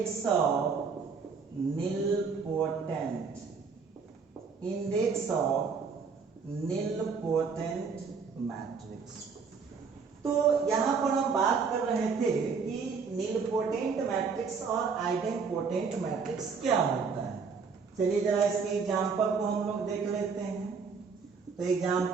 nilpotent, index of nilpotent matrix. तो यहां पर हम बात कर रहे थे कि निलपोटेंट मैट्रिक्स और आइडेंपोटेंट मैट्रिक्स क्या होता है। चलिए जरा इसके एग्जांपल को हम लोग देख लेते हैं। तो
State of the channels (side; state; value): left; quieter; 5.4 dB